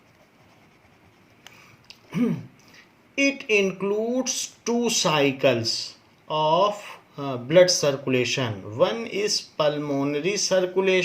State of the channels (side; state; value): both; identical; correlation 1.00